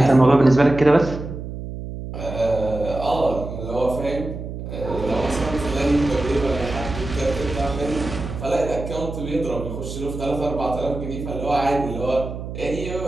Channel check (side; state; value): right; noise; hum, 8 dB below the sound